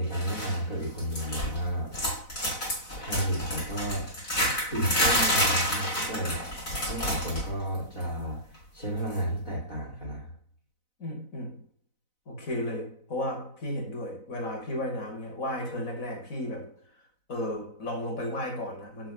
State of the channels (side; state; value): right; late; 4.0 ms